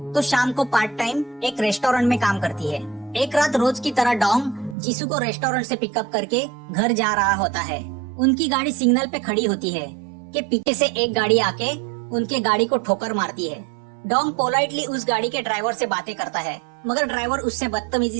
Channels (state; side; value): drops out; left; at 4.8 s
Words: तो शाम को पार्ट टाइम एक रेस्टोरेंट में काम करती है। एक रात रोज की तरह डॉन जिसू को रेस्टोरेंट से पिकअप करके घर जा रहा होता है। उनकी गाड़ी सिग्नल पे खड़ी होती है कि पीछे से एक गाड़ी आके उनके गाड़ी को ठोकर मारती है। डॉन पोलाइटली उस गाड़ी के ड्राइवर से बातें करता है, मगर ड्राइवर उससे बदतमीजी